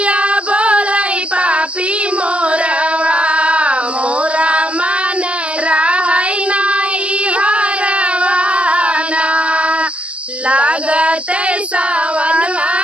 बोलाई पापी मोरवा, मोरा मन रहै नाई हरवाना। लागते सावना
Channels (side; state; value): left; late; 0.062 ms